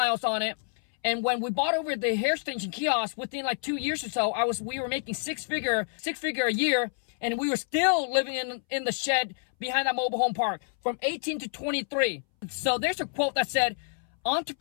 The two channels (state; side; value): silent; right; 59 dB below the other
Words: on it. And when we bought over the hair extension kiosk, within like 2 years or so, we were making six figure a year, and we were still living in the shed behind that mobile home park from 18 to 23. So there's a quote that said,